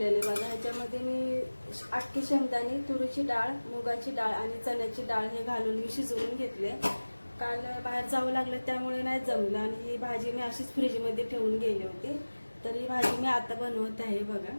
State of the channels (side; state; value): both; inverted; correlation -1.00